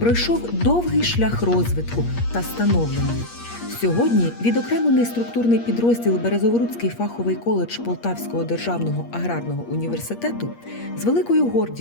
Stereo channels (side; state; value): right; late; 8.5 ms